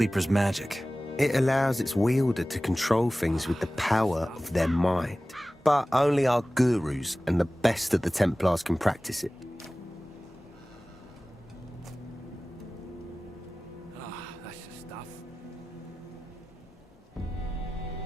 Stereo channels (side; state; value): both; normal; correlation 0.97